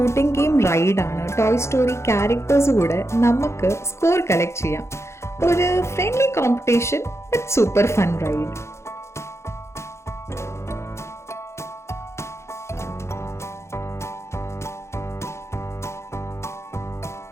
ഗെയിം റൈഡാണ്. ടോയ് സ്റ്റോറി ക്യാരക്ടേഴ്സ് കൂടെ നമുക്ക് സ്കോർ കളക്ട് ചെയ്യാം. ഒരു friendly competition but super fun ride.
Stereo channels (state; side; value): late; right; 0.13 ms